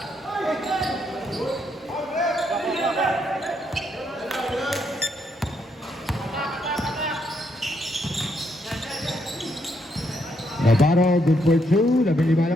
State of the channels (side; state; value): both; normal; correlation 0.76